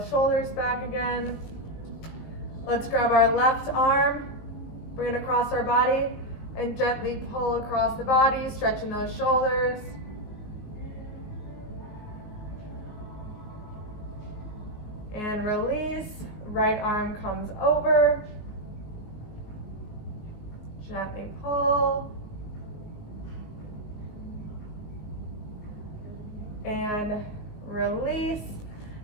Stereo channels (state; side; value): late; right; 19 ms